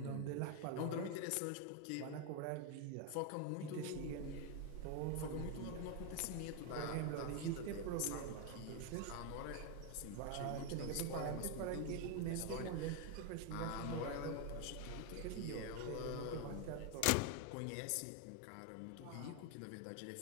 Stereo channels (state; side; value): different; both; correlation 0.01